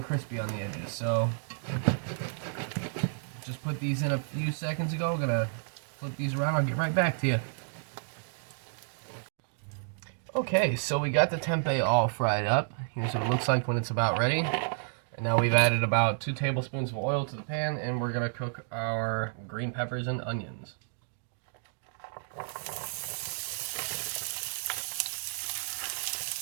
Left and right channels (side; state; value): left; silent; digital silence